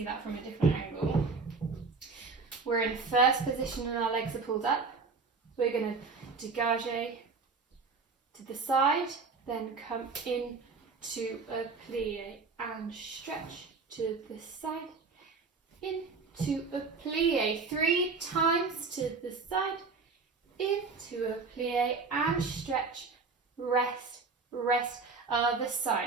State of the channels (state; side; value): quieter; left; 4.5 dB